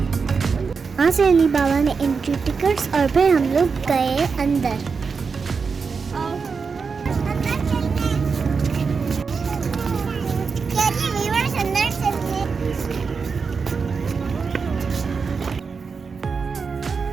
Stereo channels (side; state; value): left; quieter; 5.2 dB